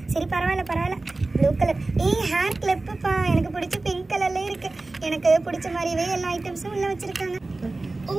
சரி பரவாயில்ல. Blue colour. ஹேர் கிளிப்புப்பா, எனக்கு பிடிச்ச பிங்க் கலர்ல இருக்கு. எனக்கு பிடிச்ச மாதிரியே எல்லா ஐட்டம்ஸும் உள்ள வச்சிருக்காங்க.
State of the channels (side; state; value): left; quieter; 3.2 dB